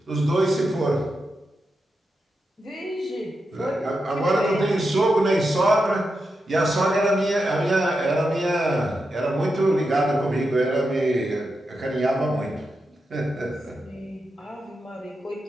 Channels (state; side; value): normal; both; correlation 0.88